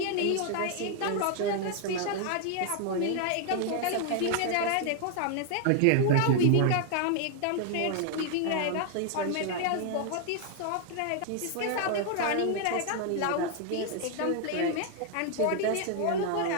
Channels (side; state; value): both; different; correlation 0.00